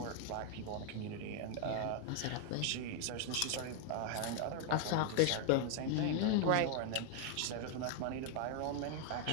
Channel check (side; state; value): both; different; correlation 0.00